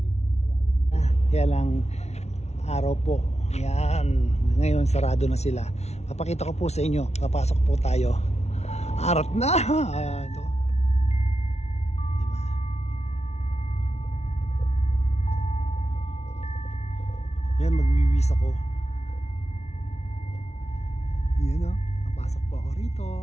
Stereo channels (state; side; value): late; right; 0.31 ms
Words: kaya lang araw po. Yan, ngayon sarado na sila. Papakita ko po sa inyo. Papasok po tayo. Arat na. Ito. Diba? Yan, magwiwis ako. Yan o, napasok po ako rito.